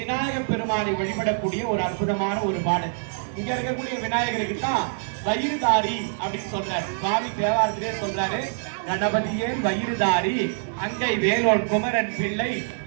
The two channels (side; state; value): left; silent; digital silence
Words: பெருமானை வழிபடக்கூடிய ஒரு அற்புதமான ஒரு பாடல். இங்க இருக்கக்கூடிய விநாயகருக்கு தான் வயிறுதாரி அப்படின்னு சொல்றாரு. சுவாமி தேவாரத்திலே சொல்றாரு, கணபதியே வயிறுதாரி, அங்கை வேலோன் குமரன் பிள்ளை,